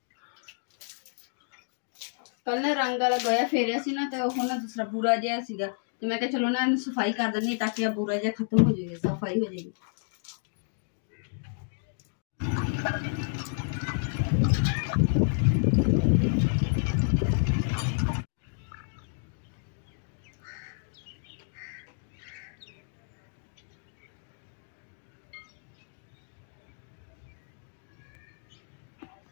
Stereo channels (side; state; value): right; silent; digital silence